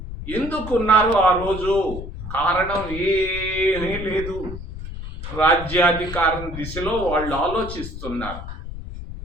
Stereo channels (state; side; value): noise; left; rumble, 9 dB below the sound